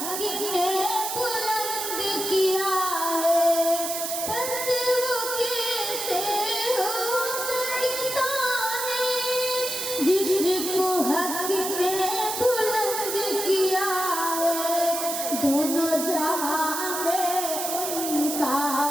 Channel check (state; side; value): noise; right; hiss, 3 dB below the sound